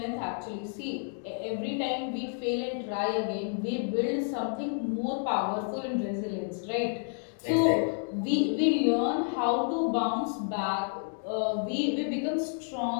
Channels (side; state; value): right; silent; 58 dB below the other